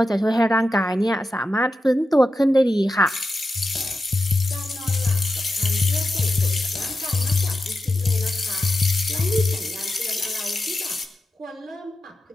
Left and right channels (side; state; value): both; normal; correlation 0.90